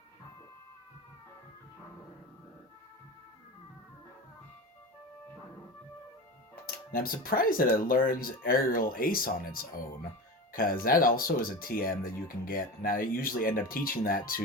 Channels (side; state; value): both; normal; correlation 0.28